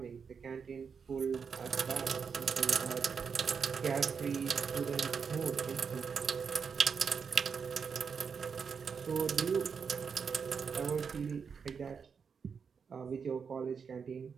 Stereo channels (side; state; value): left; quieter; 6.1 dB